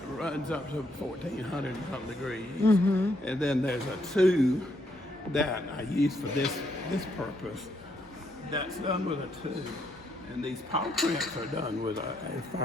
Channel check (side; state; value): both; normal; correlation 0.74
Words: runs up to 1,400 and some degrees. And then there's a 2 that I use for this purpose. That's done with a 2. And these paw prints are done with